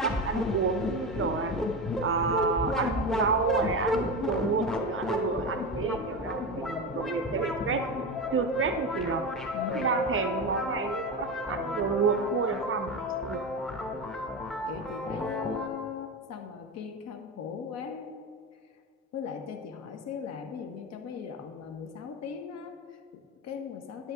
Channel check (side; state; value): both; normal; correlation 0.20